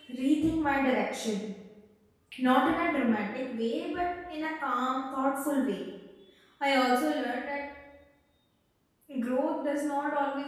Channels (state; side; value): identical; both; correlation 1.00